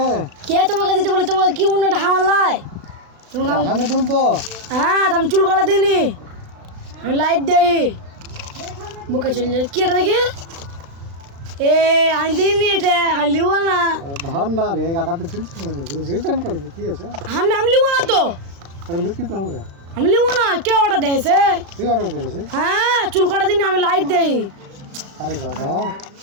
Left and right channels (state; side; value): late; left; 36 ms